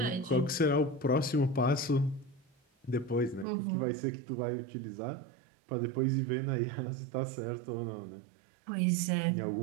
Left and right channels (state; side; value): drops out; left; at 3.5 s